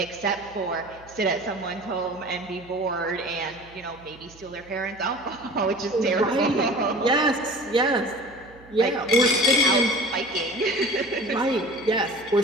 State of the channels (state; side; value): noise; right; hum, 24 dB below the sound